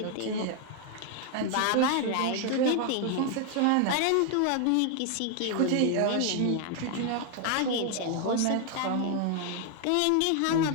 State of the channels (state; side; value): different; both; correlation 0.01